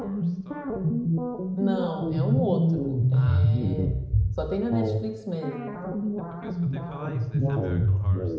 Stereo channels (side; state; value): both; identical; correlation 1.00